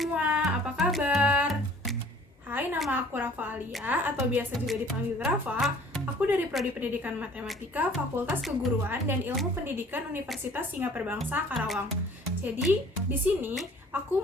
apa kabar? Hai, nama aku Rafa Alia atau biasa juga dipanggil Rafa. Aku dari Prodi Pendidikan Matematika, Fakultas Keguruan dan Ilmu Pendidikan Universitas Singapura Bangsa, Karawang. Jadi, di sini aku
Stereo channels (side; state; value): both; normal; correlation 0.52